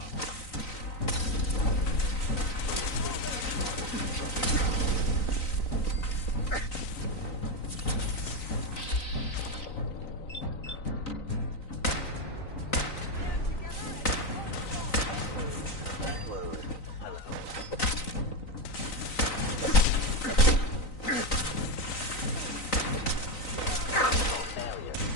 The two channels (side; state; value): right; late; 3.9 ms